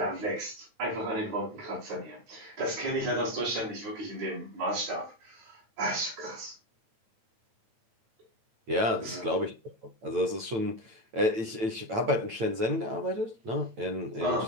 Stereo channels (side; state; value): left; late; 9.0 ms